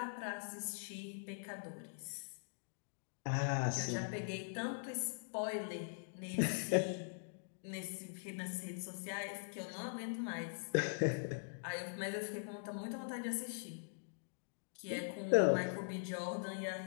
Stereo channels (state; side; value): silent; right; digital silence